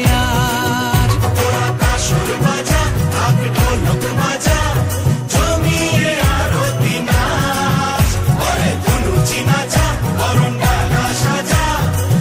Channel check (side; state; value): both; identical; correlation 1.00